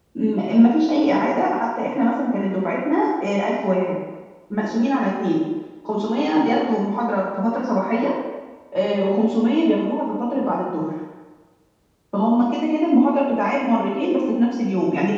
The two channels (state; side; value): identical; both; correlation 1.00